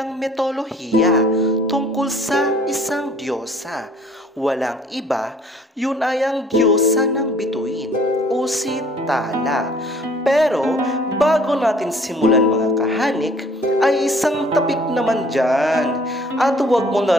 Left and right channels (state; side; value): normal; both; correlation 0.56